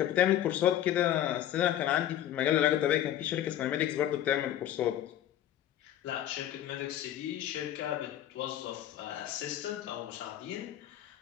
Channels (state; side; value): quieter; right; 11.8 dB